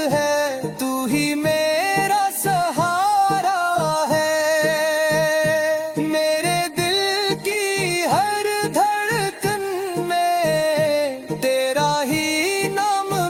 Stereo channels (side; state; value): both; identical; correlation 1.00